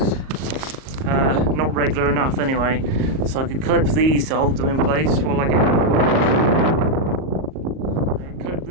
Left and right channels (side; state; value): left; late; 38 ms